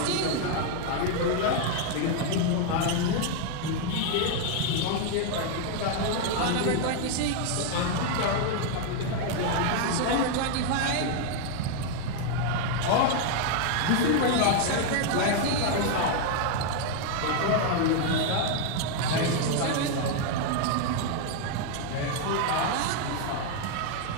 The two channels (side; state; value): both; different; correlation 0.00